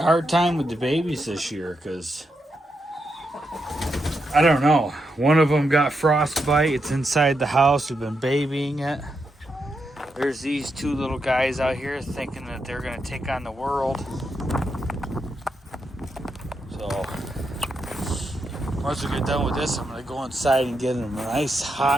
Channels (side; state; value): both; normal; correlation 0.84